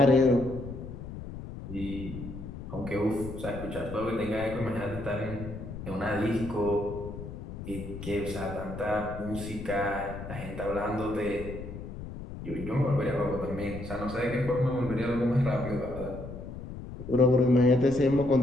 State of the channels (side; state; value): left; noise; rumble, 10 dB below the sound